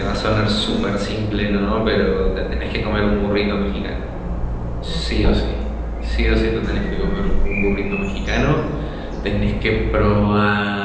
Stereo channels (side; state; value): both; identical; correlation 1.00